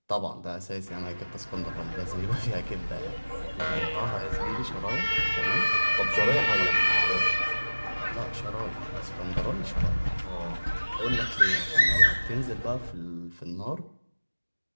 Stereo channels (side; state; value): both; inverted; correlation -1.00